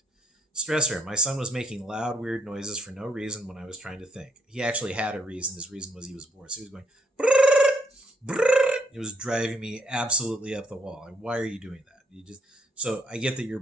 Stressor, my son was making loud, weird noises for no reason when I was trying to think. He actually had a reason. His reason was he was bored. So he was going, brrr, brrr. It was driving me absolutely up the wall. Like, why are you doing that? So I get that you're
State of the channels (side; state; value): both; normal; correlation 0.71